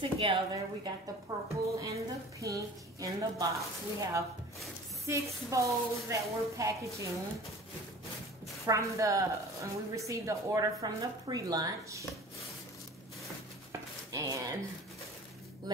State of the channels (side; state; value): both; normal; correlation 0.42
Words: We got the purple and the pink in the box. We have 6 bows that we're packaging from and we received the order from the pre-lunch. And